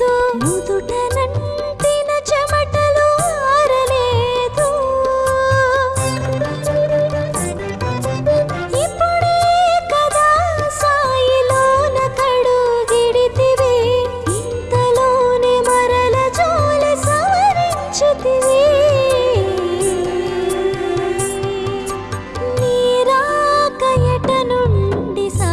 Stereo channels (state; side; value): identical; both; correlation 1.00